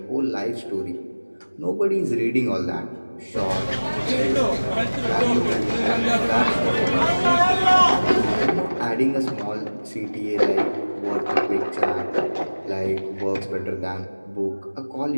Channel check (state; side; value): inverted; both; correlation -1.00